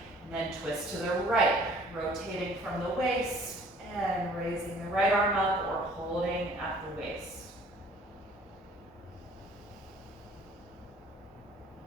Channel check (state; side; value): normal; both; correlation 0.54